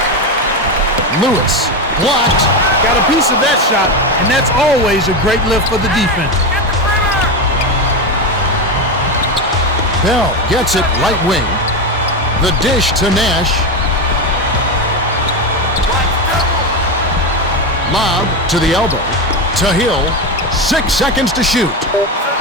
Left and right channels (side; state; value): both; normal; correlation 0.15